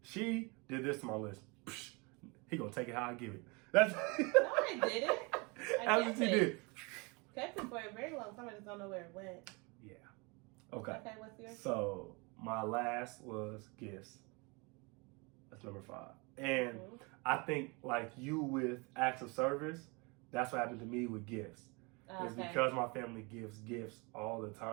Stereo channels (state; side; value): quieter; left; 29.0 dB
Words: She did this to my list. Psh, he gonna take it how I give it. That's no, I didn't. That's what she did. Kept it for a very long time. I just don't know where it went. Yeah. Okay. Okay, what's yours? So my last was gifts. That's number 5. And I think like you with acts of service, that's what happened to me with gifts. It's because my family gives gifts all the